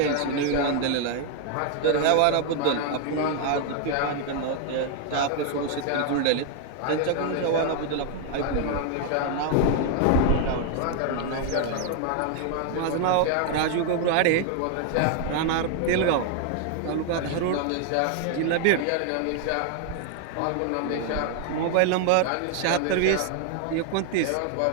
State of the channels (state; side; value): different; both; correlation 0.00